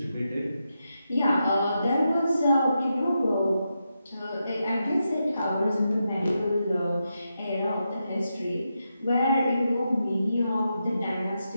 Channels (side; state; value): both; inverted; correlation -0.86